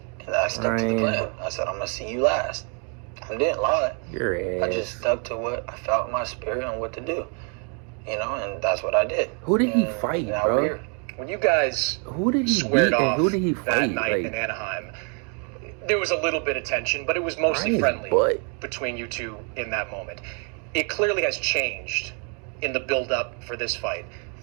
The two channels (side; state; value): left; quieter; 38.8 dB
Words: And I stuck to the Ryan. plan. I said, I'm going to see you last. I didn't lie. Your ass. I just stuck to what I felt in my spirit and what to do. You know, and that's what I did. Who did he And fight, now bro? we're here. When you guys Who did he squared beat and off who did he that fight? night Like, in Anaheim, there was a little bit of tension, but it was mostly Ryan's friendly butt. between you two in that moment. It clearly has changed in the build-up for this fight.